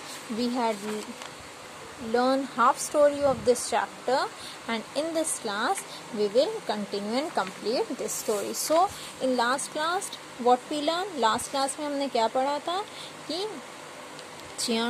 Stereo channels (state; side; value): identical; both; correlation 1.00